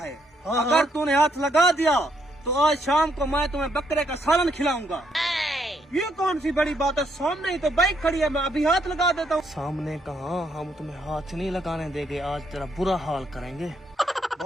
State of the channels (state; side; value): normal; both; correlation 0.74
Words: अगर तूने हाथ लगा दिया तो आज शाम को मैं तुम्हें बकरे का सालन खिलाऊंगा। ये कौन सी बड़ी बात है, सामने ही तो बाइक खड़ी है, मैं अभी हाथ लगा देता हूँ। सामने कहाँ, हम तुम्हें हाथ नहीं लगाने देंगे, आज तेरा बुरा हाल करेंगे।